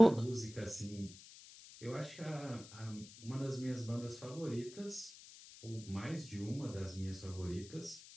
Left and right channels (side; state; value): left; noise; hiss, 17 dB below the sound